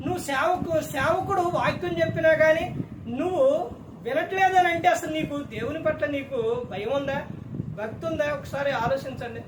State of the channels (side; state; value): both; identical; correlation 1.00